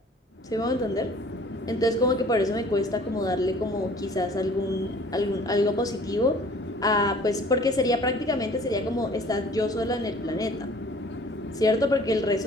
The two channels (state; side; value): normal; both; correlation 0.51